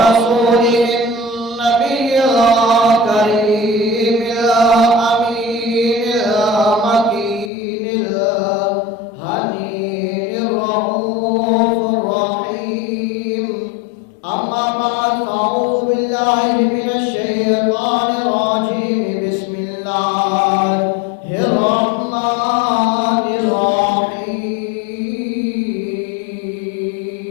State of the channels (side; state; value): right; drops out; at 7.5 s